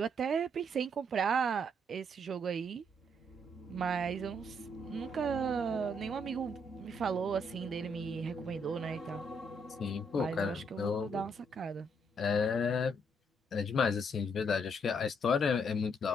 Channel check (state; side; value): normal; both; correlation 0.72